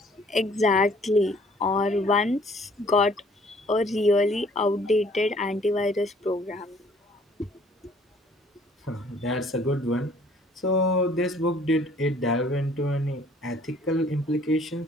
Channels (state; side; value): normal; both; correlation 0.58